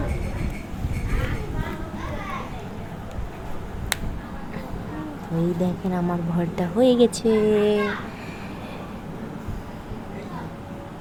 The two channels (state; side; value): identical; both; correlation 1.00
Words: এই দেখেন আমার ভর্তা হয়ে গেছে।